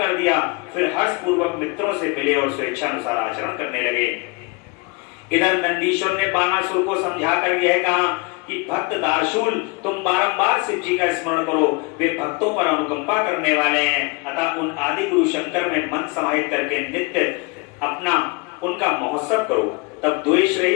दिया। फिर हर्ष पूर्वक मित्रों से मिले और स्वेच्छानुसार आचरण करने लगे। इधर नंदीश्वर ने बाणासुर को समझाकर यह कहा कि भक्त दार्शूल, तुम बारंबार शिव जी का स्मरण करो, वे भक्तों पर अनुकंपा करने वाले हैं। अतः उन आदि गुरु शंकर में मन समाहित करके नित्य अपना उनका महोत्सव करो। तब द्वेष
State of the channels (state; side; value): quieter; right; 28.1 dB